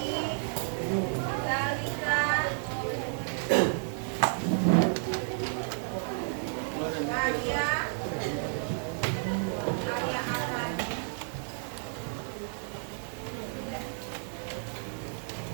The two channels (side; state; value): left; silent; 57 dB below the other